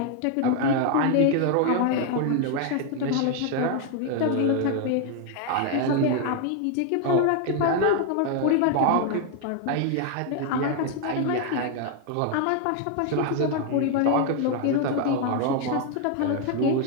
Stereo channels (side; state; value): both; different; correlation 0.00